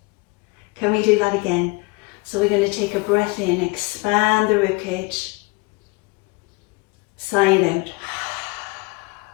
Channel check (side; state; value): right; quieter; 26.3 dB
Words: Can we do that again? So we're going to take a breath in, expand the ribcage, sigh it out.